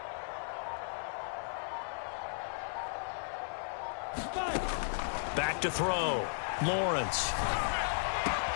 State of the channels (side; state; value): right; silent; digital silence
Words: Back to throw. Lawrence.